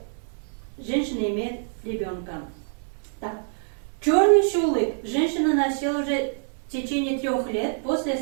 женщина имеет ребенка. Так. Черный шулык женщина носила уже в течение 3 лет после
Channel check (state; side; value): silent; left; digital silence